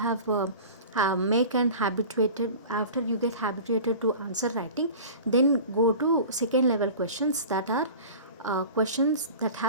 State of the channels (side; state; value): both; inverted; correlation -0.38